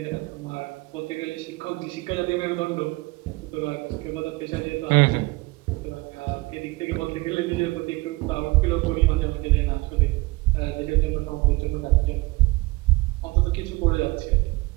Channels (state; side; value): quieter; left; 22.6 dB